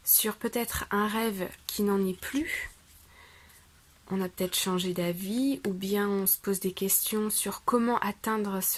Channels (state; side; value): identical; both; correlation 1.00